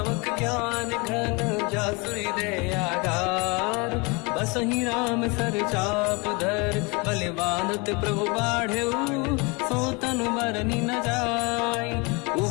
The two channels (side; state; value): right; quieter; 28.5 dB